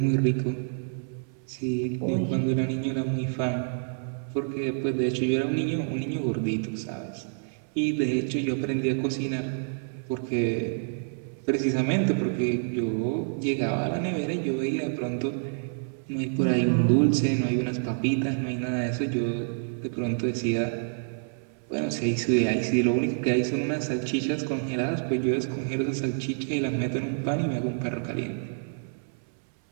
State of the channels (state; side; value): silent; left; 60 dB below the other